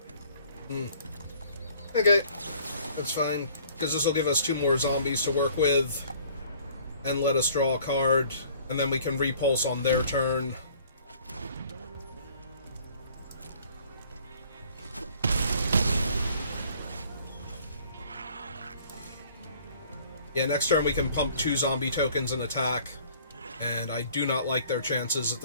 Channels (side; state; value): both; inverted; correlation -0.56